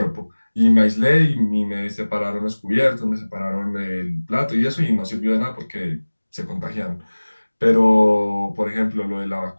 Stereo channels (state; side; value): inverted; both; correlation -1.00